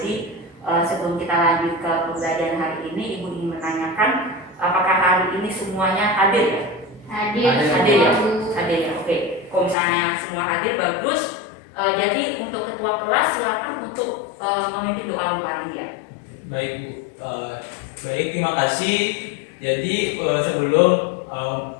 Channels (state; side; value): drops out; right; at 9.8 s